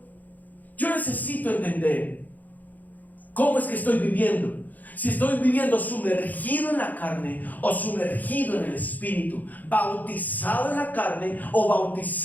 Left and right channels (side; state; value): right; late; 0.082 ms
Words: Yo necesito entender cómo es que estoy viviendo. Si estoy viviendo sumergido en la carne o sumergido en el Espíritu, bautizado en la carne o